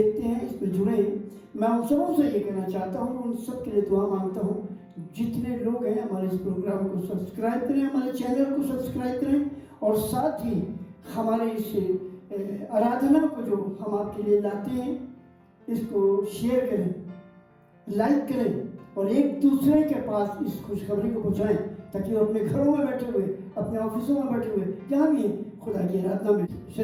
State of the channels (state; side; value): identical; both; correlation 1.00